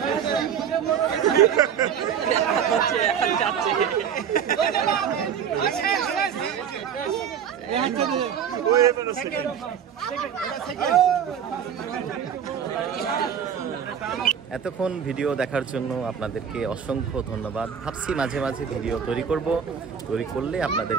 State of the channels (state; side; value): quieter; left; 8.1 dB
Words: এতক্ষণ ভিডিও দেখার জন্য আপনাদেরকে অসংখ্য ধন্যবাদ। ভাবছি মাঝে মাঝে ভিডিও তৈরি করলে